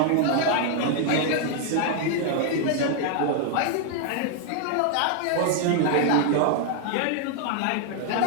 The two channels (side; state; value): both; different; correlation 0.00